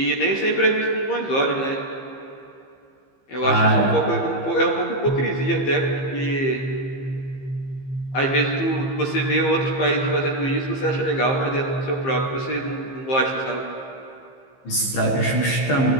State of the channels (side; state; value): right; late; 15 ms